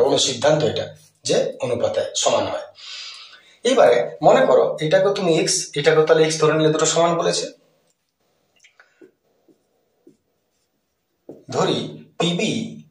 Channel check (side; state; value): both; identical; correlation 1.00